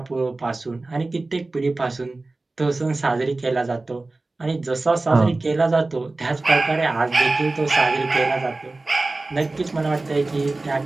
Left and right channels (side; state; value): left; quieter; 3.2 dB